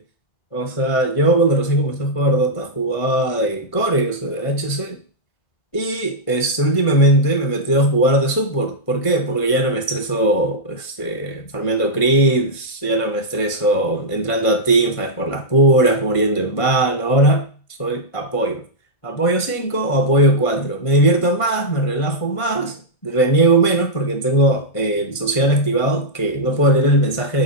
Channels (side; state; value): right; late; 1.5 ms